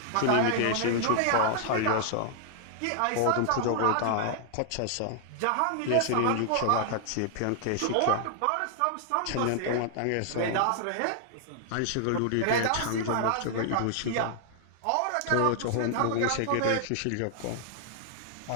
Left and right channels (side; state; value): both; different; correlation -0.01